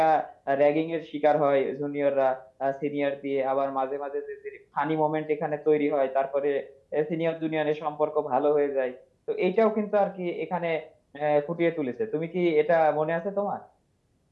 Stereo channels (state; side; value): identical; both; correlation 1.00